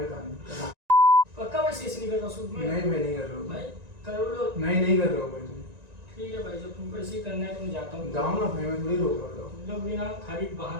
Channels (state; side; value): late; left; 1.9 ms